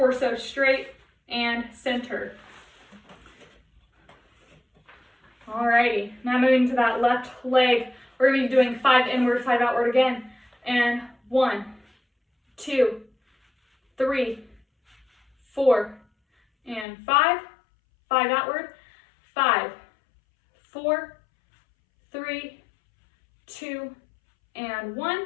straight and centered. Alrighty, now moving to that left leg. We're going to be doing 5 inward, 5 outward again. And 1, 2, 3, 4, and 5. 5 outward. 5, 4, 3, 2, and 1.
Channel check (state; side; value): drops out; right; at 16.9 s